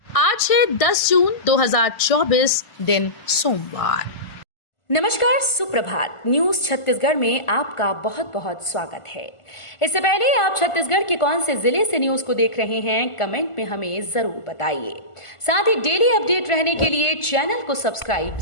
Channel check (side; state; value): right; late; 1.4 ms